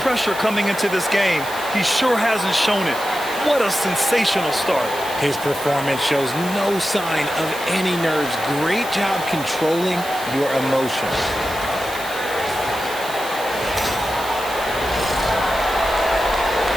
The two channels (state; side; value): noise; right; hiss, 13 dB below the sound